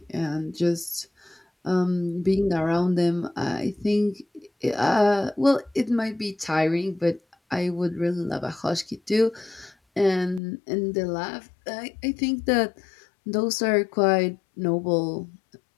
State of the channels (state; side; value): drops out; right; at 10.4 s